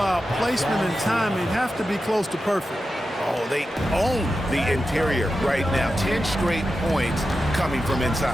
Placement and timing have to be close to perfect. Oh, they own the interior right now. 10 straight points coming from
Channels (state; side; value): normal; both; correlation 0.91